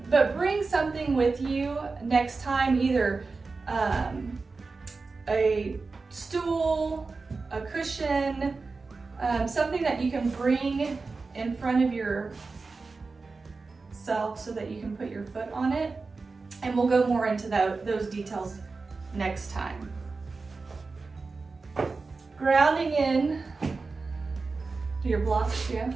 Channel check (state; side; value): quieter; left; 4.1 dB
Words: bring something with you next time, either a stool, a cushion, something that you can bring in front of yourself so that you can put your foot on it. And we'll go more into those details next time. Grounding in to your blocks, yeah.